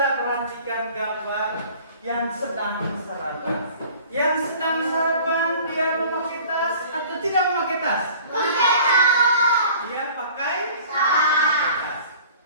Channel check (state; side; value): inverted; both; correlation -0.48